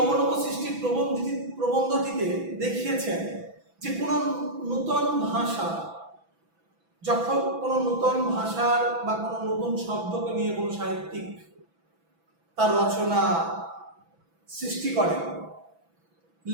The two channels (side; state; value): left; late; 6.0 ms